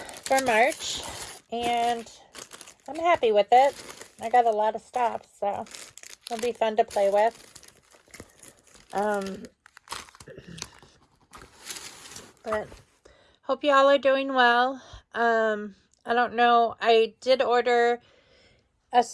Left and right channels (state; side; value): identical; both; correlation 1.00